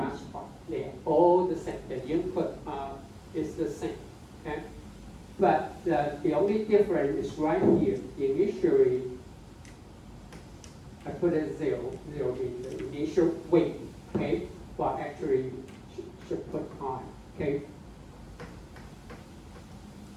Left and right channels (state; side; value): identical; both; correlation 1.00